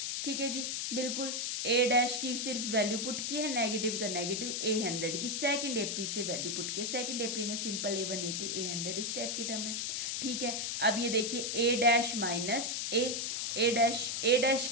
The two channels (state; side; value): noise; left; hiss, 1 dB below the sound